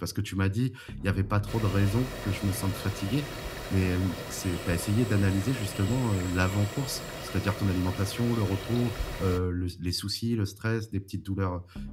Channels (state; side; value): identical; both; correlation 1.00